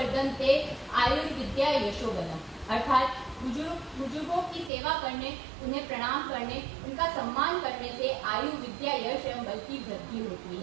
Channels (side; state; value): left; drops out; at 4.7 s